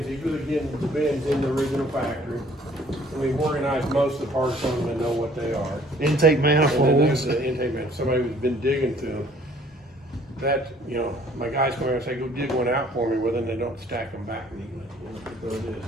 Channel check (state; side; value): normal; both; correlation 0.58